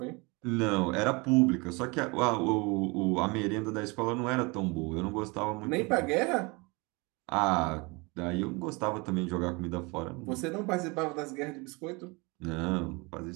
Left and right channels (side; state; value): left; quieter; 27.4 dB